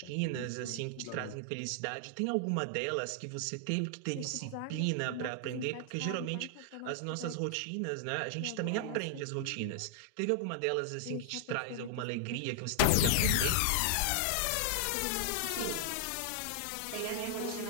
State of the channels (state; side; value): different; both; correlation -0.01